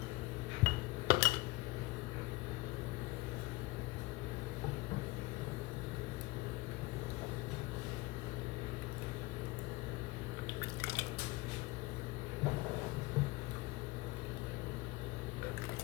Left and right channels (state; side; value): quieter; right; 21.2 dB